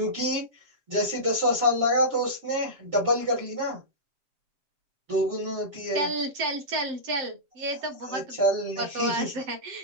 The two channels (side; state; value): left; late; 7.6 ms